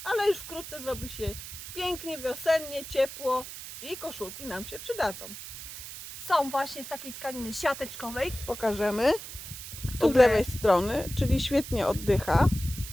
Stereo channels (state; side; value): noise; right; hiss, 11 dB below the sound